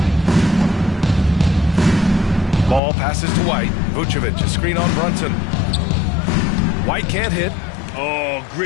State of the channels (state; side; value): drops out; right; at 2.8 s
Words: Ball passes to White. Vucevic, a screen on Brunson. White can't hit. Oh,